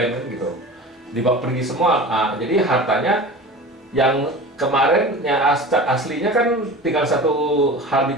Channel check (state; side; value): normal; both; correlation 0.36